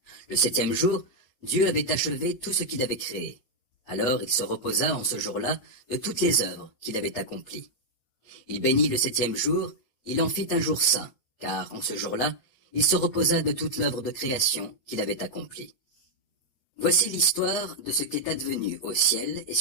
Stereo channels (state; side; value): late; right; 8.1 ms